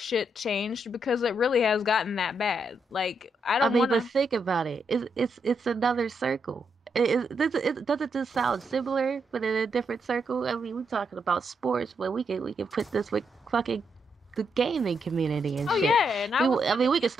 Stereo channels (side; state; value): both; normal; correlation 0.80